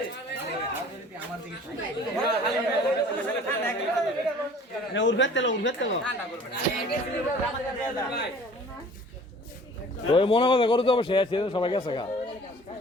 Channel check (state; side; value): normal; both; correlation 0.49